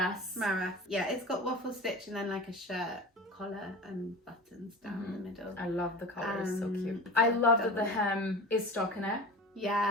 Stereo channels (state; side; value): normal; both; correlation 0.34